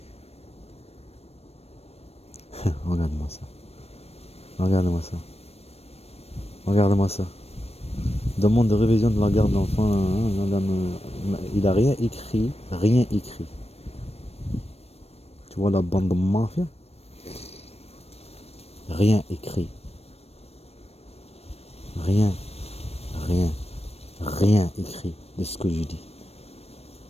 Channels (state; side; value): late; right; 0.30 ms